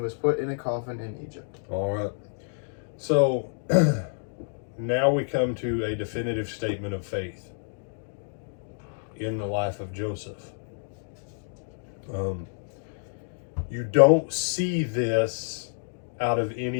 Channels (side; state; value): right; silent; digital silence